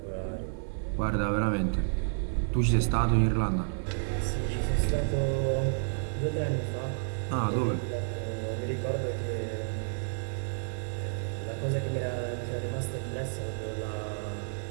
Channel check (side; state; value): left; silent; 56 dB below the other